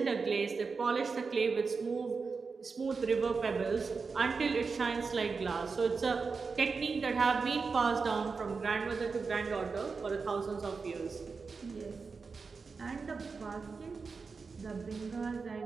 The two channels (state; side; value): quieter; left; 4.8 dB